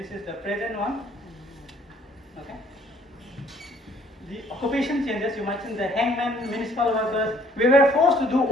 is the present one. Okay. The occupation changes, you mentioned the hangman, municipal workers, we were forced to do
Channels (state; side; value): normal; both; correlation 0.60